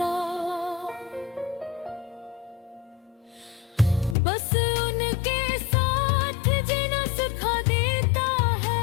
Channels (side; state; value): right; drops out; at 4.2 s